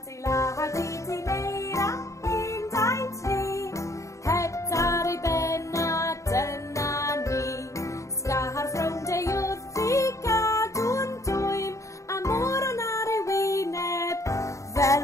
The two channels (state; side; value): late; right; 0.15 ms